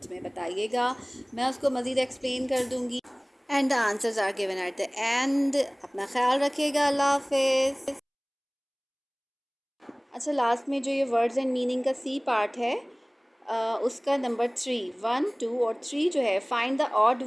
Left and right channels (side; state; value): both; identical; correlation 1.00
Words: में बताइएगा, मैं उसको मज़ीद एक्सप्लेन कर दूँगी। And the answers are given at the end. अपना ख्याल रखिएगा, अल्लाह हाफिज़। अच्छा, लास्ट में जो ये वर्ड्स एंड मीनिंग का सी पार्ट है उसका नंबर 3, 1, 2 और 3 जो है, find the odd